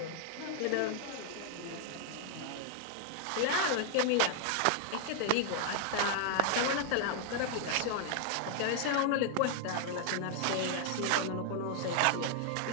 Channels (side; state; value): both; different; correlation -0.01